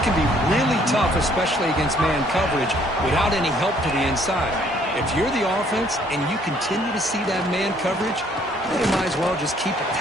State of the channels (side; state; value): both; normal; correlation 0.63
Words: can be really tough, especially against man coverage, without any help to the inside. If you're the offense and you continue to see that man coverage, then you might as well just keep